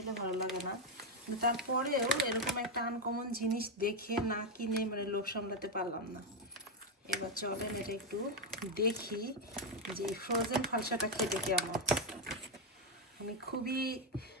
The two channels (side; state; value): both; normal; correlation 0.04